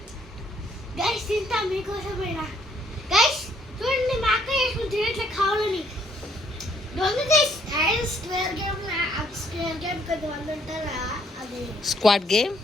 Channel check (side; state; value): both; normal; correlation 0.67